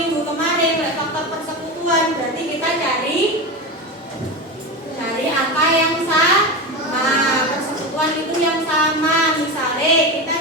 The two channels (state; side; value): normal; both; correlation 0.21